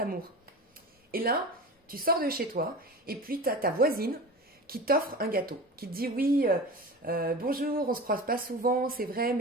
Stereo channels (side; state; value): both; normal; correlation 0.32